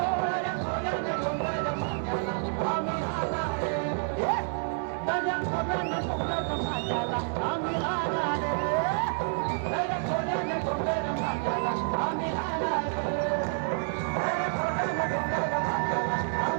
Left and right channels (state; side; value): silent; left; digital silence